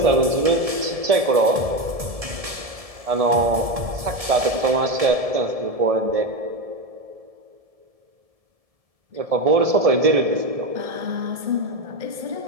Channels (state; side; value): late; left; 1.7 ms